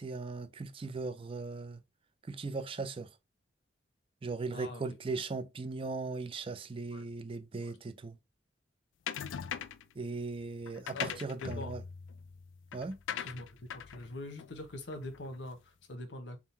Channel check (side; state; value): both; normal; correlation 0.46